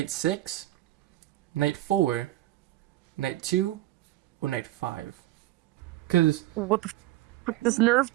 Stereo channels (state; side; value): quieter; left; 16.2 dB